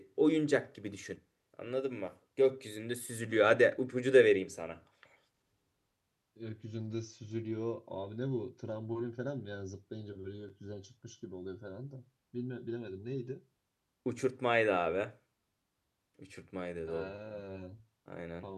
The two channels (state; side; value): identical; both; correlation 1.00